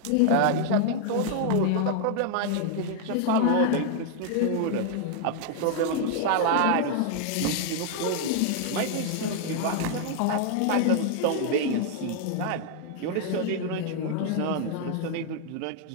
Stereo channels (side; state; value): both; different; correlation 0.00